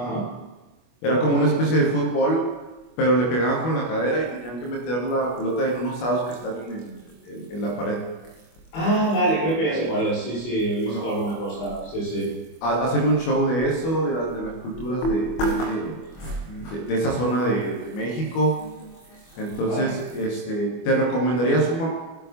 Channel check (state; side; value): late; right; 25 ms